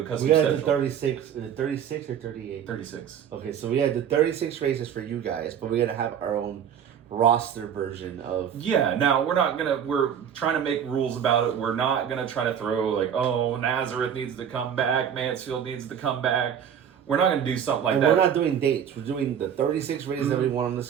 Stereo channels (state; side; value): quieter; left; 8.6 dB